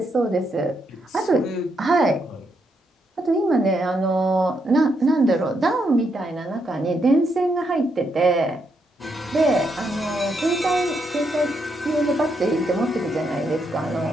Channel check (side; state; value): both; normal; correlation 0.79